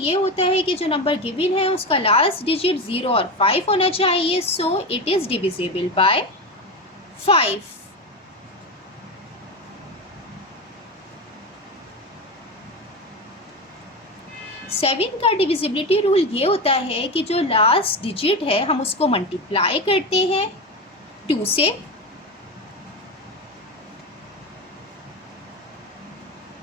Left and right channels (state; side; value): normal; both; correlation 0.20